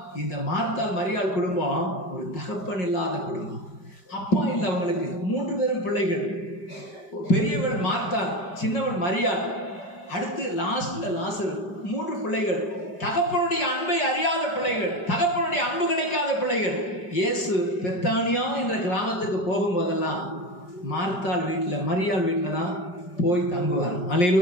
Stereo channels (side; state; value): right; late; 5.1 ms